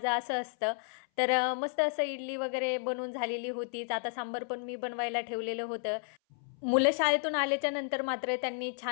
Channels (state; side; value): silent; right; 56 dB below the other